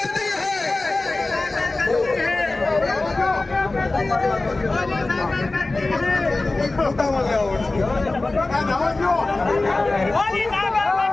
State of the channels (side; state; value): right; quieter; 3.2 dB